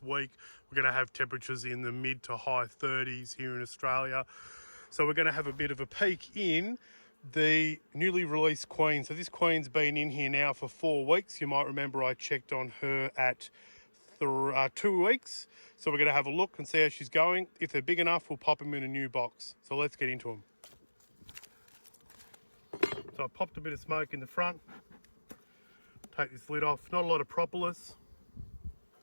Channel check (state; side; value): inverted; both; correlation -1.00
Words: week. We're going to have temperatures in the mid to high 30s here in Australia. So we're going to have a bit of a peek in the newly released queen. So this queen's been in here now for 4 weeks. You might remember I checked on her at 2 weeks. So we're going to have a look and see how she's going. If they're big enough, we'll pop them in a new box. So let's get into them. So I popped a bit of smoke in the front. Take this lid off. Not a lot of propolis.